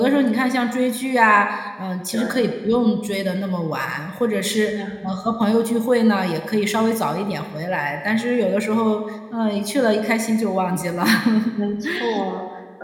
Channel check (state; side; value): identical; both; correlation 1.00